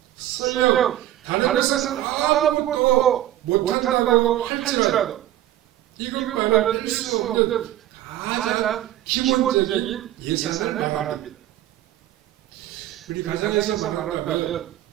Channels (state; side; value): quieter; left; 13.4 dB